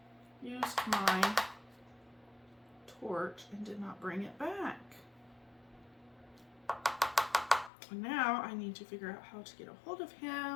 used my torch and did not bring it back. And now I need to figure out how to get a hold of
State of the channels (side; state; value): right; drops out; at 7.7 s